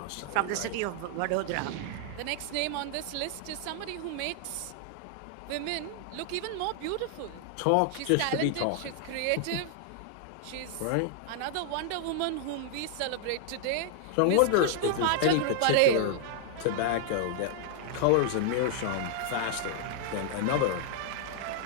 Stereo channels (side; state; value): both; different; correlation -0.01